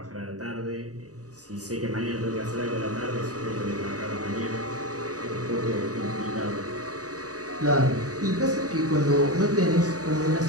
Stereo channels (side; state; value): left; late; 0.67 ms